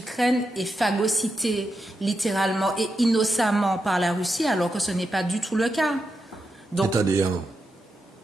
est phagocytée littéralement et innocemment par la Russie, alors que ce n'est pas du tout le cas. Donc, c'est-à-dire,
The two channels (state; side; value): normal; both; correlation 0.86